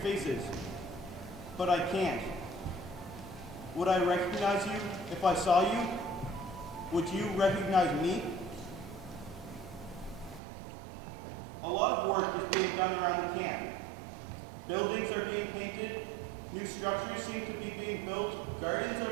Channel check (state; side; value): drops out; left; at 10.4 s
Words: but I can't. Would I recognize you if I saw you? Would you recognize me? A lot of work is being done around the camp. Buildings are being painted, new structures seem to be being built, gardens are